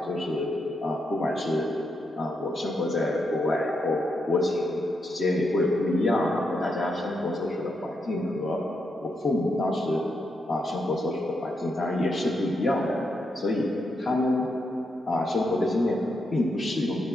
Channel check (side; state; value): both; normal; correlation 0.82